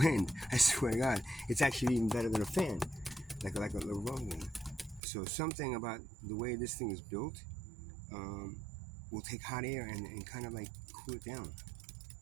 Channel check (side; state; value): left; drops out; at 5.0 s